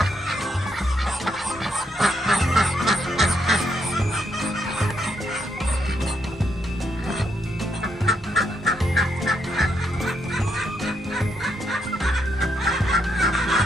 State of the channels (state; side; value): normal; both; correlation 0.77